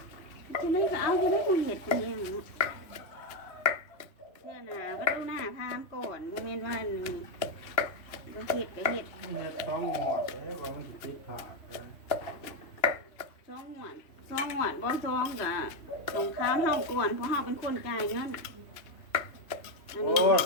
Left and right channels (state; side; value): late; right; 2.9 ms